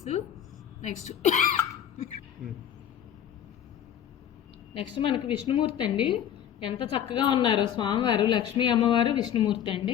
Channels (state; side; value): quieter; right; 9.9 dB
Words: నెక్స్ట్ మనకి విష్ణుమూర్తి అండి. ఎంత చక్కగా ఉన్నారో స్వామివారు, లక్ష్మీ అమ్మవారు, విష్ణుమూర్తి